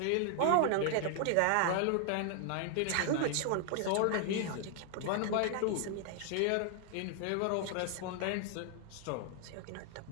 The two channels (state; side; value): different; both; correlation 0.00